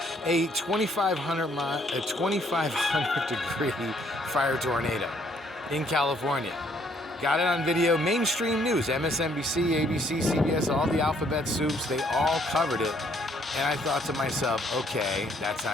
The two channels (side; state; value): both; normal; correlation 0.66